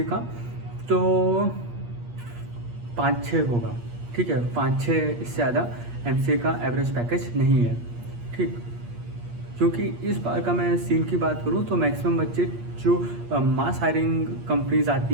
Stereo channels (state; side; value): late; left; 8.5 ms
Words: का तो 5-6 होगा, ठीक है, 5-6, इससे ज़्यादा MCA का एवरेज पैकेज नहीं है, ठीक। क्योंकि इस बार का मैं सीन की बात करूं तो मैक्सिमम बच्चे जो मास हायरिंग कंपनीज